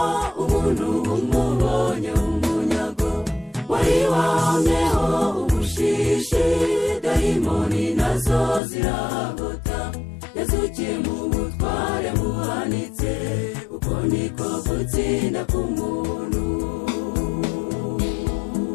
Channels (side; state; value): right; drops out; at 8.6 s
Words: umuntu umubonye umunyago. Wari wahamyeho ubushishi, dayimoni nazo ziragota. Yazukiye mu butware buhanitse, uko niko gutsinda k'umuntu.